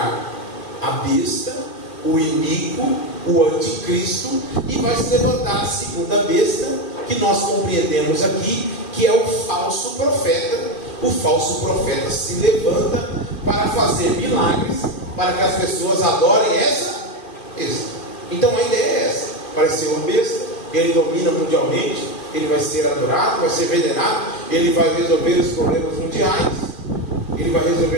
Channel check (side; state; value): right; late; 2.4 ms